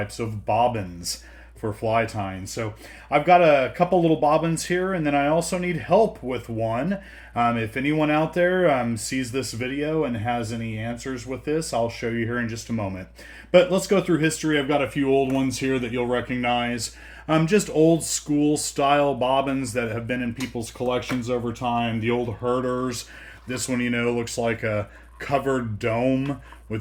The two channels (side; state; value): both; identical; correlation 1.00